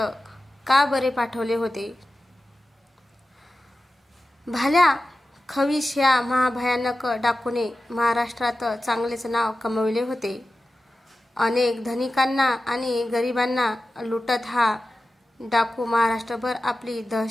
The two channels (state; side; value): normal; both; correlation 0.94